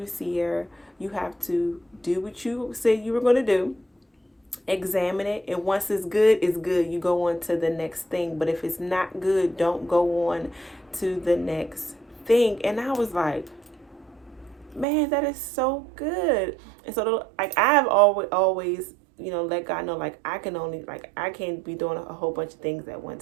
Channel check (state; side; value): drops out; left; at 14.9 s